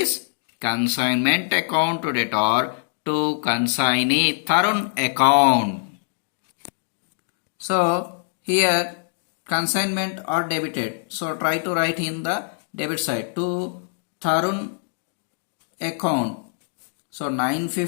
consignment account to debtor to consignee Tarun account. So here consignment are debited. So try to write in the debit side to Tarun account. So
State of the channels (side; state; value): right; silent; digital silence